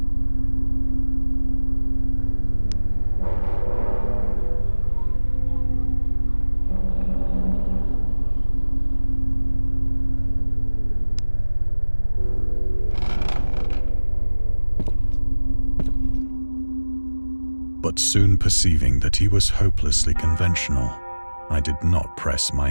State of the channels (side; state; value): both; inverted; correlation -1.00